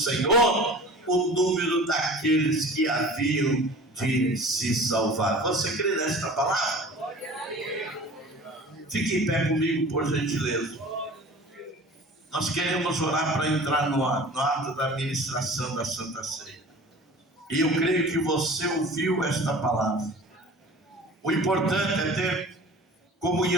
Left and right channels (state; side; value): normal; both; correlation 0.41